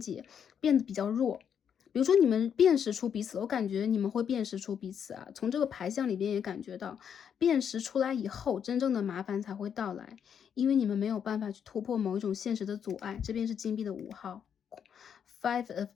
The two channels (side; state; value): right; quieter; 8.0 dB